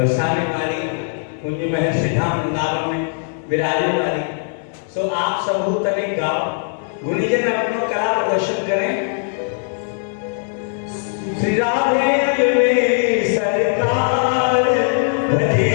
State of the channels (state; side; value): silent; right; 66 dB below the other